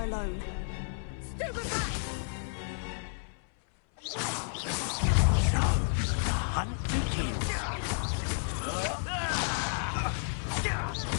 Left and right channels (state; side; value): silent; right; 57 dB below the other